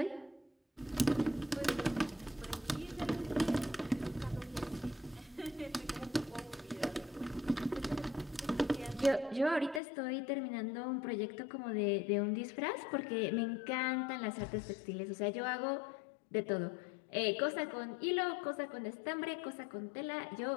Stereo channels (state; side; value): drops out; right; at 9.8 s